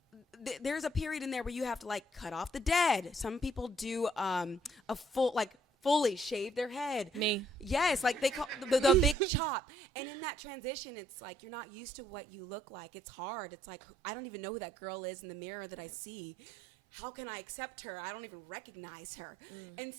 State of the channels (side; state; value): left; drops out; at 9.2 s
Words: there's a period in there where you have to like cut off the dead. Some people do a full like fully shave their head. Me. Yes, like they call the big chop. And in that transition, it's like you're not used to what you look like. It's hard. It's like I don't even know who that girl is in the mirror that I see. How can I accept her? I don't even recognize her. And